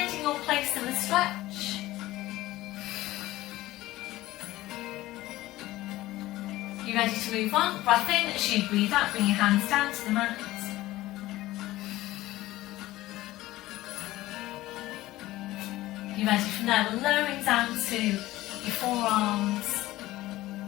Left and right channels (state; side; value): quieter; right; 16.9 dB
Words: your place in the stretch. You ready to move on? Breath in as you breathe out, bring your hands down to the mat. You ready from there? We're lowering down to your forearms.